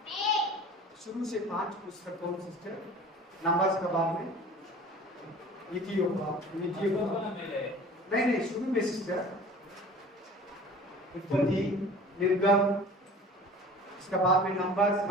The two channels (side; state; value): both; normal; correlation 0.43